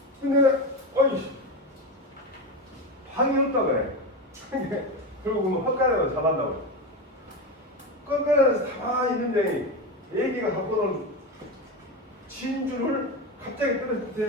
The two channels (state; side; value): normal; both; correlation 0.19